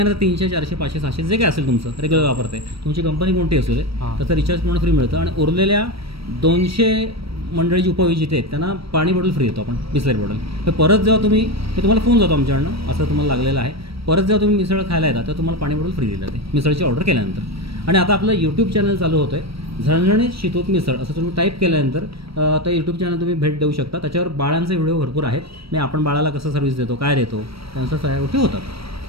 300, 400, 500, 600 जे काय असेल तुमचं रेग्युलर वापरते, तुमची कंपनी कोणती असू दे, त्याचं रिचार्ज पूर्ण फ्री मिळतं. आणि उरलेल्या 200 मंडळी जी उपविजेते आहेत त्यांना पाणी बॉटल फ्री देतो आपण, बिस्लरी बॉटल. तर परत जेव्हा तुम्हाला फोन जातो आमच्याकडनं असं तुम्हाला लागलेलं आहे, परत जेव्हा तुम्ही मिसळ खायला येतात तेव्हा तुम्हाला पाणी बॉटल फ्री दिलं जाते मिसळची ऑर्डर केल्यानंतर. आणि आता आपलं यूट्यूब चॅनल चालू होतं आहे, झणझणीत शितूत मिसळ असं तुम्ही टाईप केल्यानंतर तर यूट्यूब चॅनल तुम्ही भेट देऊ शकता. त्याच्यावर बाळांचे व्हिडिओ भरपूर आहेत. मी आपण बाळाला कसं सर्व्हिस देतो, काय देतो, त्यांच्या सगळ्या गोष्टी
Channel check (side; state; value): left; late; 0.76 ms